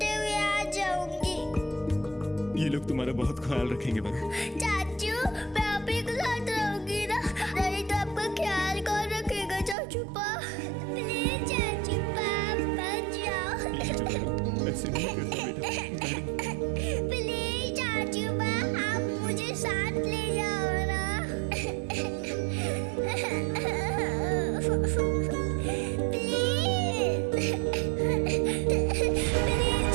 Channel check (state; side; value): drops out; left; at 9.8 s